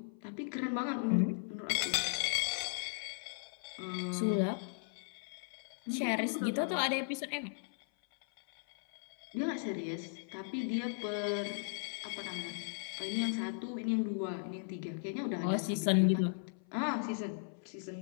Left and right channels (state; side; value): silent; right; 53 dB below the other